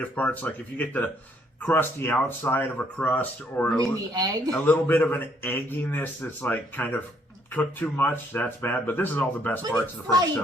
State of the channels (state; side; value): normal; both; correlation 0.68